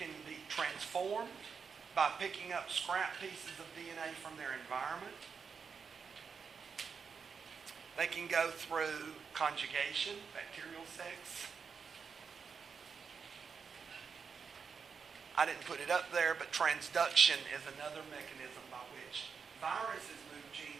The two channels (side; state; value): left; quieter; 5.9 dB